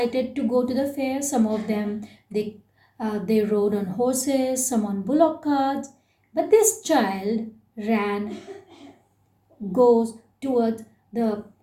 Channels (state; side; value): identical; both; correlation 1.00